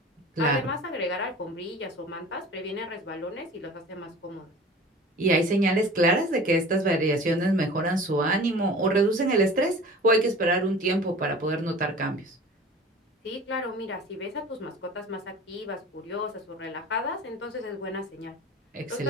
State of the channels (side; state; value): both; normal; correlation 0.41